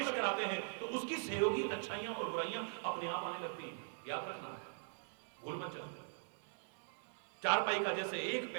कराते हैं तो उसकी सहयोगी अच्छाइयां और बुराइयां अपने आप आने लगती हैं। याद रखना है, भूल मत जाना। चारपाई का जैसे एक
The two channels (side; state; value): left; silent; digital silence